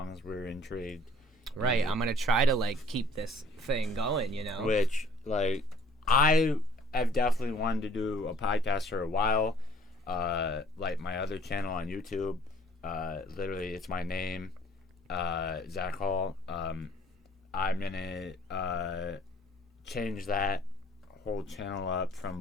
as we're intrigued. Right, I'm gonna try to like keep this thing going, you know. Which, like, I have definitely wanted to do a podcast for a while. Like my other channel on YouTube, literally it's my name, Zach Hall. I'm gonna change that whole channel up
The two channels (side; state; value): both; normal; correlation 0.56